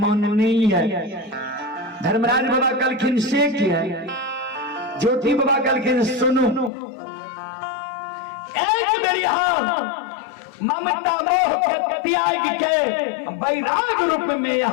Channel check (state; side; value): drops out; right; at 6.7 s